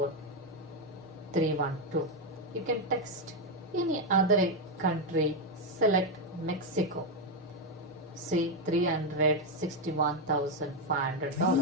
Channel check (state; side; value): normal; both; correlation 0.04